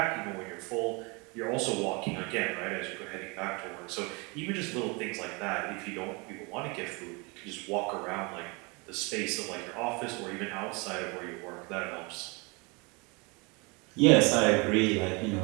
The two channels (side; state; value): left; quieter; 28.9 dB